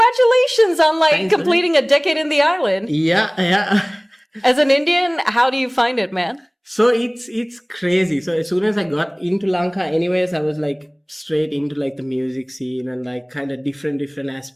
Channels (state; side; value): identical; both; correlation 1.00